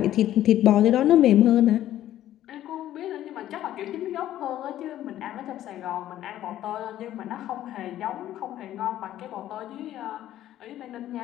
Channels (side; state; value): right; quieter; 12.8 dB